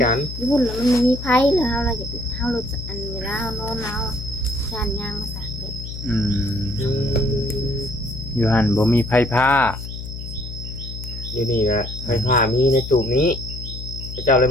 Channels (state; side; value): noise; left; hum, 9 dB below the sound